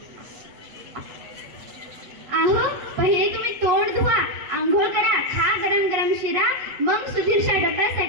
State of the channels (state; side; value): late; left; 8.0 ms